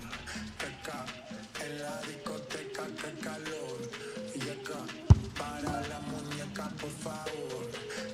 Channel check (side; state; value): both; identical; correlation 1.00